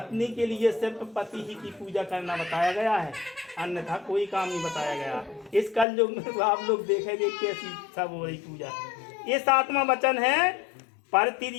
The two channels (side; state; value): right; drops out; at 5.9 s